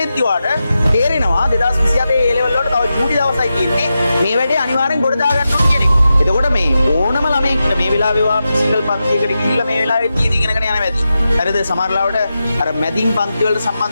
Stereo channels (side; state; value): both; inverted; correlation -0.90